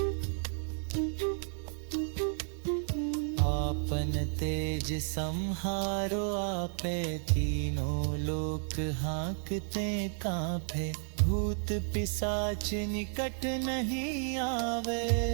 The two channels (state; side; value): silent; left; 56 dB below the other